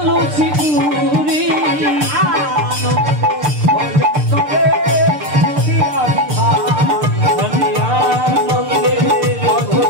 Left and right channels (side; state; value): left; late; 6.7 ms